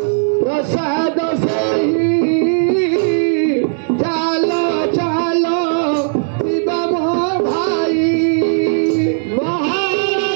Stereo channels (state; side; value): silent; left; 69 dB below the other